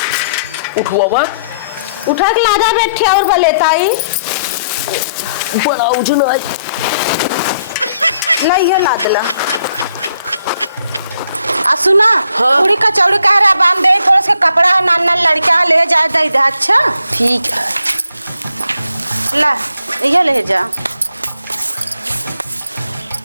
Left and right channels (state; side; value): inverted; both; correlation -0.71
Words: उठवा उठा के लादा बैठे और बलेताई बड़ा उजन है नहीं है लादला आ सुना। हाँ? पूरी कचौड़ी कह रहा बांध दे थोड़ा सा कपड़ा नान लड़का ले जा दे दे। अच्छा ठीक है ला ये ले जा